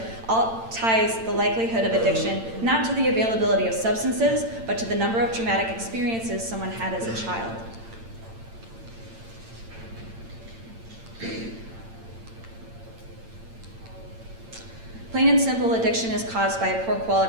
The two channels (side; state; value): left; late; 8.8 ms